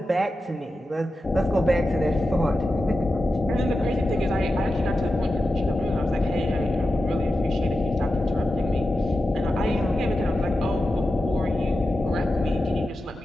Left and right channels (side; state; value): both; normal; correlation 0.91